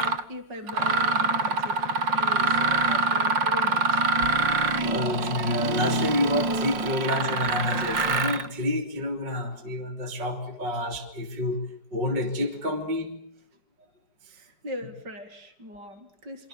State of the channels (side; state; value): left; late; 4.9 ms